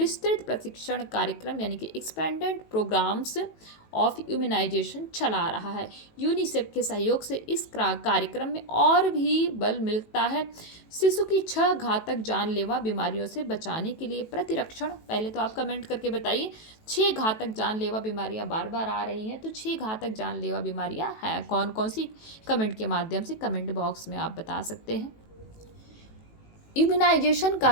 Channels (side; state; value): right; late; 18 ms